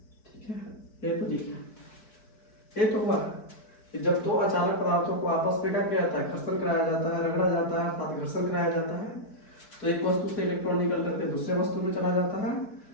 ठीक है, ये तो लिखा, ये तो हुआ कि जब दो अचालक पदार्थों को आपस में क्या किया जाता है, घर्षण कराया जाता है, रगड़ा जाता है, अर्थात घर्षण कराया जाता है, तो एक वस्तु से इलेक्ट्रॉन निकल करके दूसरे वस्तु में चला जाता है।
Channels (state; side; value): late; right; 4.6 ms